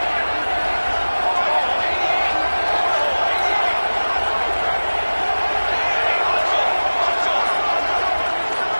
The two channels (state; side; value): inverted; both; correlation -1.00